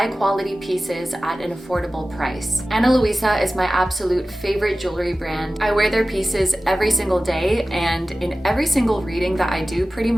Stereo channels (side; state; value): both; normal; correlation 0.96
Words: pieces at an affordable price. Ana Luisa is my absolute favorite jewelry brand. I wear their pieces every single day and in every single reading that I do pretty